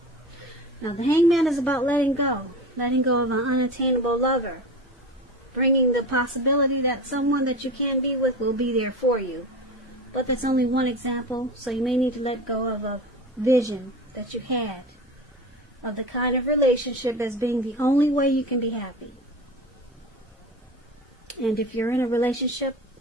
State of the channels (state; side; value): normal; both; correlation 0.30